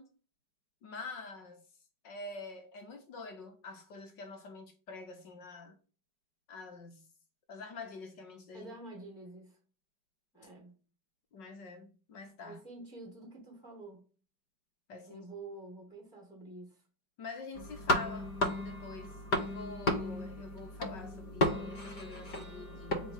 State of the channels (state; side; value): late; right; 5.0 ms